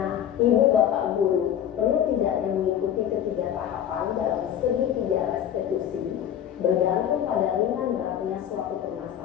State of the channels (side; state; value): right; quieter; 10.1 dB